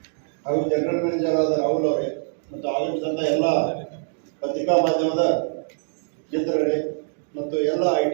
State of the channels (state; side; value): silent; left; digital silence